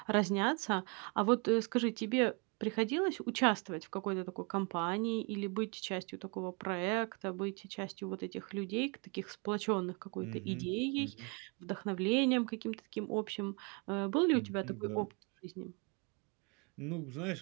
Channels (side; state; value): left; quieter; 33.3 dB